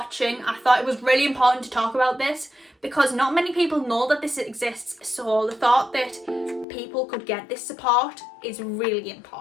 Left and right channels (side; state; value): right; drops out; at 6.7 s